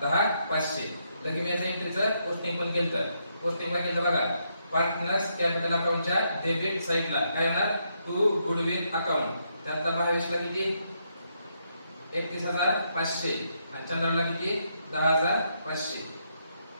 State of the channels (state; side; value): inverted; both; correlation -0.78